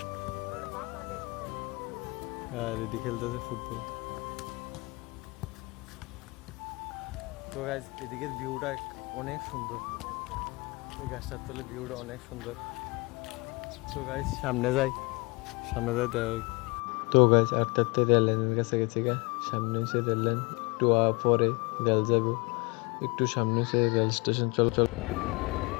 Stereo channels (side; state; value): right; quieter; 26.8 dB